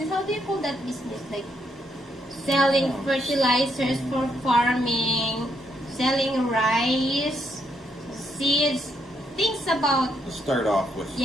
How do you call that business? Like selling Oh. fertilizers for farming, selling rice, seeds, things about, To start off with,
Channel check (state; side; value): normal; both; correlation 0.76